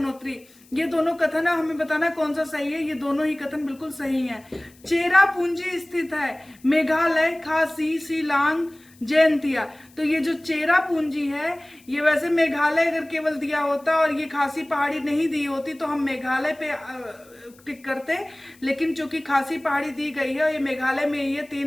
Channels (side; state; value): left; noise; hiss, 28 dB below the sound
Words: ये दोनों कथन है, हमें बताना कौन सा सही है। ये दोनों ही कथन बिल्कुल सही है। चेरापूंजी स्थित है मेघालय, खासी, शिलांग, जयंतिया। तो ये जो चेरापूंजी है, ये वैसे मेघालय अगर केवल दिया होता और ये खासी पहाड़ी नहीं दी होती तो हम मेघालय पे टिक करते, लेकिन चूंकि खासी पहाड़ी दी गई है और ये मेघालय में ये